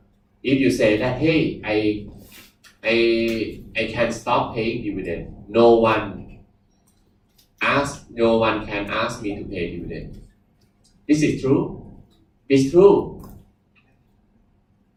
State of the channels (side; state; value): both; identical; correlation 1.00